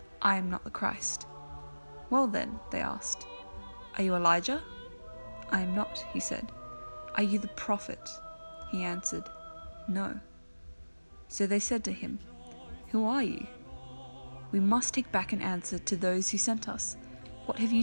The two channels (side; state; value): both; inverted; correlation -1.00